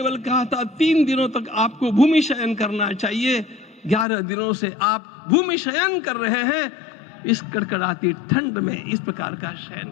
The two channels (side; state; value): right; drops out; at 4.0 s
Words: कहा था 3 दिनों तक आपको भूमि शयन करना चाहिए। 11 दिनों से आप भूमि शयन कर रहे हैं। इस कड़कड़ाती ठंड में इस प्रकार का शयन